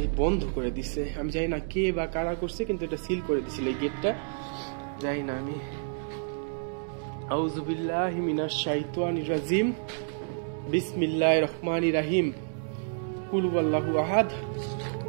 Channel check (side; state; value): left; silent; digital silence